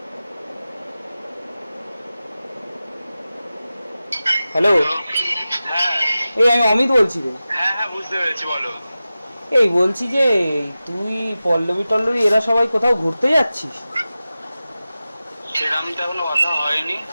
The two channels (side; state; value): both; inverted; correlation -0.95